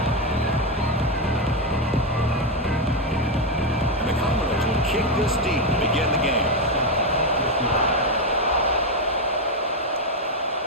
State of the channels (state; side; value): normal; both; correlation 0.07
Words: And the Commodores will kick this deep to begin the game.